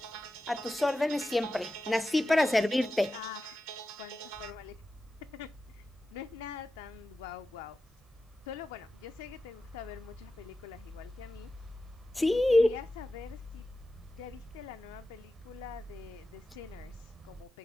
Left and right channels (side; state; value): both; normal; correlation 0.92